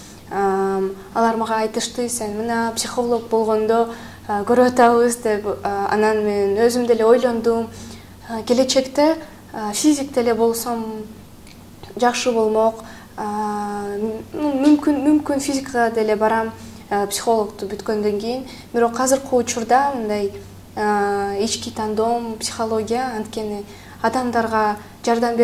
алар мага айтышты: "Сен мына психолог болгондо көрүп атабыз" деп. Анан мен өзүм деле ойлондум. Келечекте физик деле болсом жакшы болмок. Мүмкүн физикага деле барам, психологду бүткөндөн кийин. Бирок азыркы учурда мындай ички тандоом психология, анткени адамдарга жардам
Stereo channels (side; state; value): both; identical; correlation 1.00